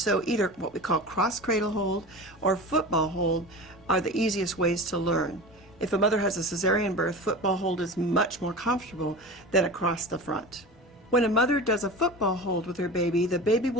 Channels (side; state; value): both; normal; correlation 0.31